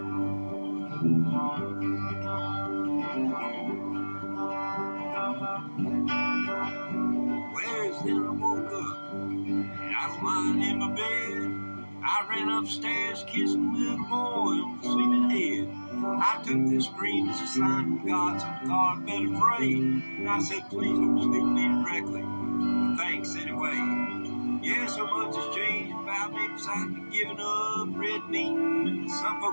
Where's then I woke up, and I was lying in my bed. I I ran upstairs, kissing little boy on the sleeping head. I took this dream as a sign from God, so God better pray. And I said, please don't speak to me directly. But thanks anyway. Yeah, so much has changed about me besides me giving up red meat. Some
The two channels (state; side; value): inverted; both; correlation -1.00